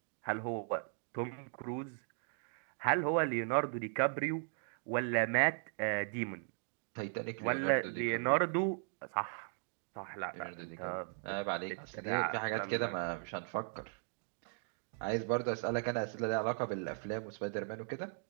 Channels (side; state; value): left; silent; 53 dB below the other